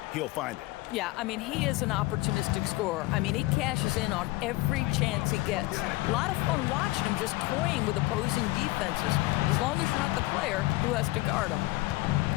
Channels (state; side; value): quieter; right; 20.5 dB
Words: he'll find it. Yeah, I mean, he is an opportunistic scorer. I mean, he cashes in on every chance he gets. A lot of fun watching him just toying with opposing defenses, as long as you're not the player who has to guard him.